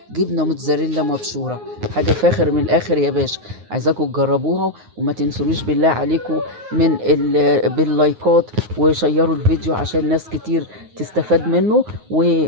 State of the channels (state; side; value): late; left; 9.5 ms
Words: جبنه موتزاريلا مبشوره. حاجه فاخر من الاخر يا باشا. عايزاكم تجربوها وما تنسونيش بالله عليكم باللايكات وشيروا الفيديو عشان ناس كتير تستفاد منه.